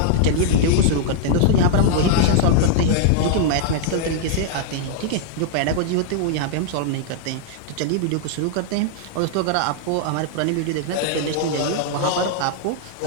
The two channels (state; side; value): different; both; correlation -0.01